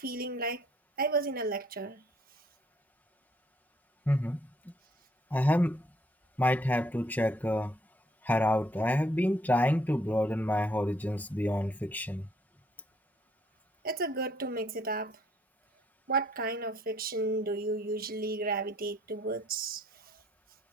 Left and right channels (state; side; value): normal; both; correlation 0.66